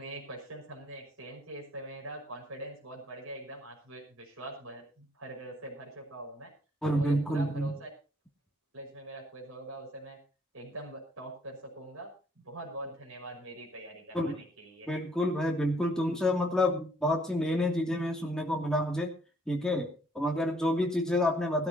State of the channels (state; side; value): normal; both; correlation 0.65